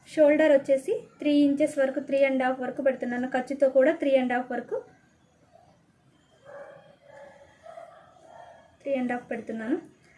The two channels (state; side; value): identical; both; correlation 1.00